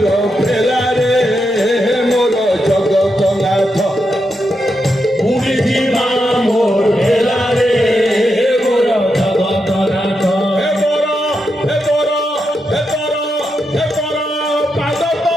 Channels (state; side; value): normal; both; correlation 0.84